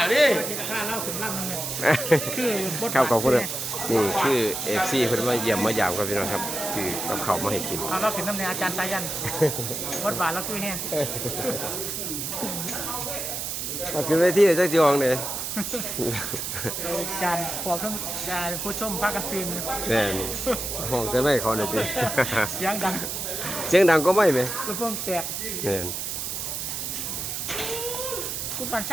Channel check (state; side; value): noise; right; hiss, 4 dB below the sound